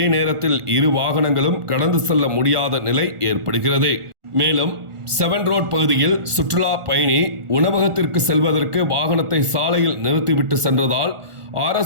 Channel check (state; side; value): late; left; 1.4 ms